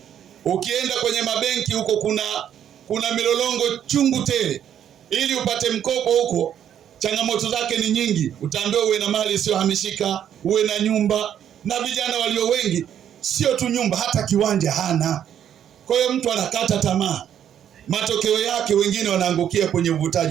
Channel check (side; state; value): left; quieter; 9.7 dB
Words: Ukienda kwenye mabenki huko kuna milolongo chungu tele. Ili upate mkopo huko, changamoto zake ni nyingi. Utaambiwa uwe na mali isiyohamishika, uwe na nyumba, na vijana walio wengi sio tu nyumba, hata kiwanja hana. Kwa hiyo mtu anakata tamaa. Matokeo yake wengine wanaangukia kwenye